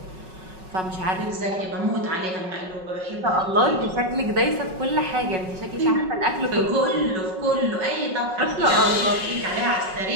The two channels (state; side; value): late; left; 5.4 ms